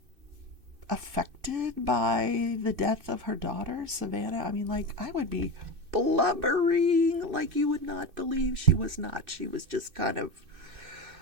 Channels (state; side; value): late; left; 2.6 ms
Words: affected by the death of her daughter, Savannah. I mean, I would be blubbering like you would not believe. She was not. She was just kind of,